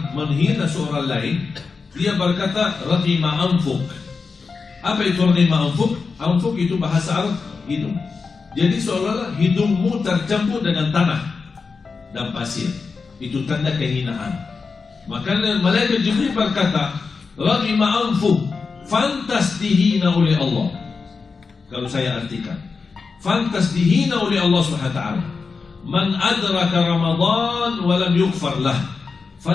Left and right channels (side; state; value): right; quieter; 4.8 dB